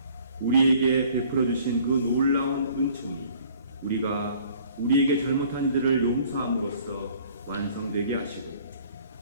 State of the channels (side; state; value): both; inverted; correlation -0.55